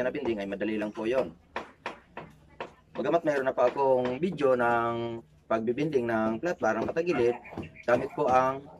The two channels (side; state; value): both; identical; correlation 1.00